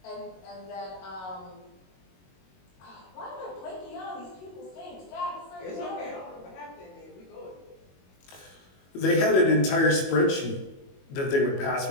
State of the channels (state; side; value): late; right; 22 ms